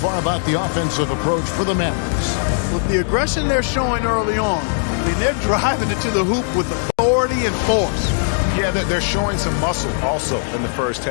about the offensive approach for the Mavericks? With the aggression they're showing early on, I mean, they're driving it to the hoop with authority and force. Yeah, they're showing some muscle also in the first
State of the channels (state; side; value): silent; right; digital silence